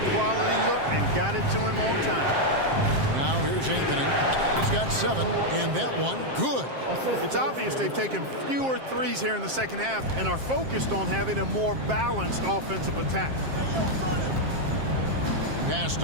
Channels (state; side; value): late; left; 7.6 ms